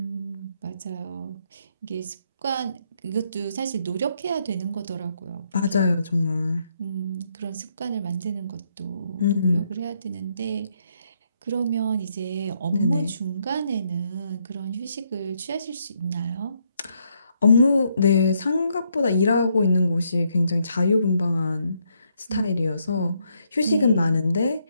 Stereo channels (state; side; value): inverted; both; correlation -0.75